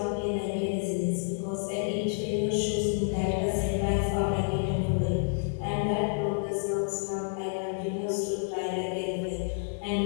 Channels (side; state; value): right; silent; digital silence